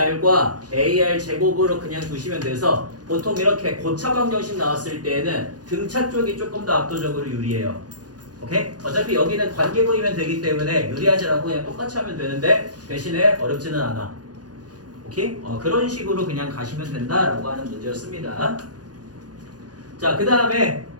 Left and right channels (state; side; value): late; left; 0.69 ms